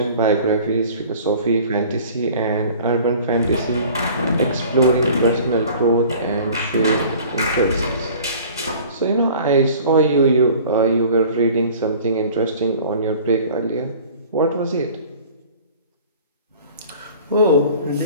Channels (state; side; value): inverted; both; correlation -0.46